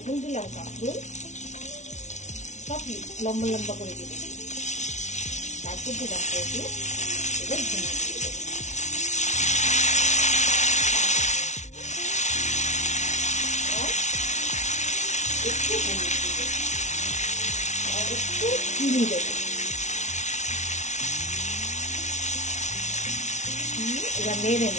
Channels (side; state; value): right; late; 0.34 ms